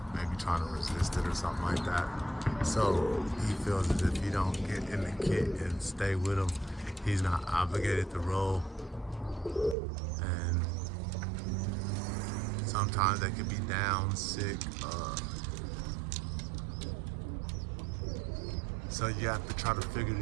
maybe trying to resist it or something like that. So he feels as if he don't get in the kit and stay with him, he's not obligated to roll. And sometimes they could be down, sick. So you have to try to figure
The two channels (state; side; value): drops out; left; at 9.8 s